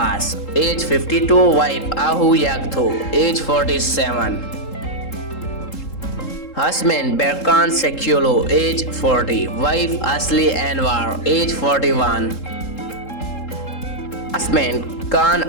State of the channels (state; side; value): late; right; 3.7 ms